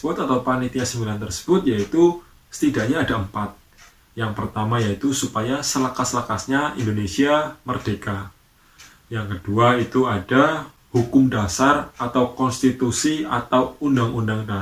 atau panitia 9 tersebut yaitu setidaknya ada 4. Yang pertama yaitu supaya selekas-lekasnya Indonesia merdeka. Yang kedua itu ada hukum dasar atau konstitusi atau undang-undang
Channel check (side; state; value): both; identical; correlation 1.00